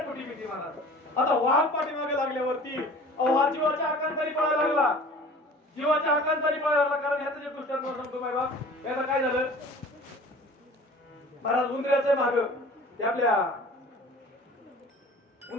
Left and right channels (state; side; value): normal; both; correlation 0.44